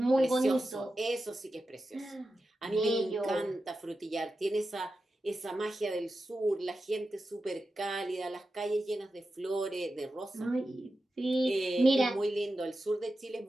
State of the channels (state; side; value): normal; both; correlation 0.91